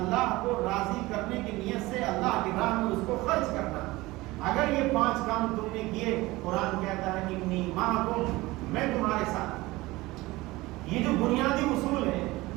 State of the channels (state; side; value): quieter; left; 20.2 dB